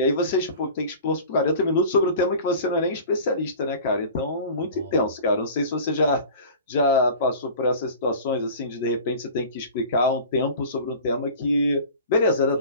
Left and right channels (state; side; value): inverted; both; correlation -0.40